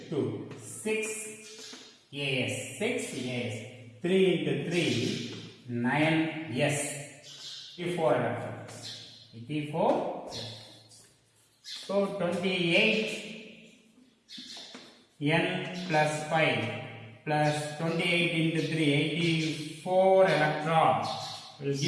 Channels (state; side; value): identical; both; correlation 1.00